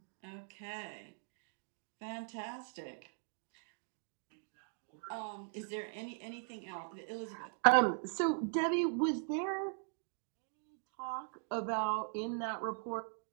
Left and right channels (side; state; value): left; silent; 51 dB below the other